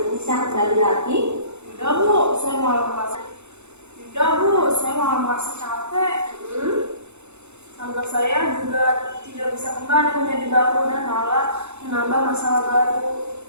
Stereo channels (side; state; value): left; late; 0.82 ms